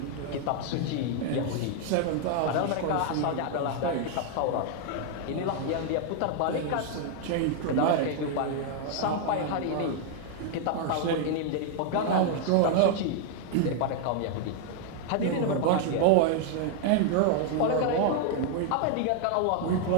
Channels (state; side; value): different; both; correlation 0.00